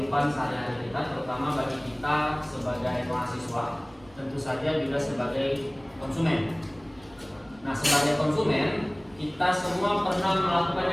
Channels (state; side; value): noise; right; rumble, 26 dB below the sound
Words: sehari-hari kita, terutama bagi kita sebagai mahasiswa, tentu saja juga sebagai konsumen. Nah, sebagai konsumen, kita semua pernah melakukan